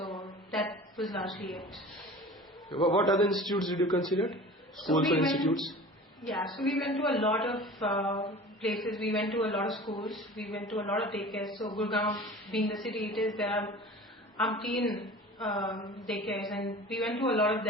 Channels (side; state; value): both; normal; correlation 0.40